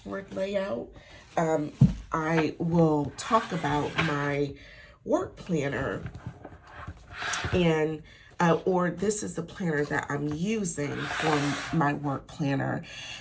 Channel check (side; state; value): both; identical; correlation 1.00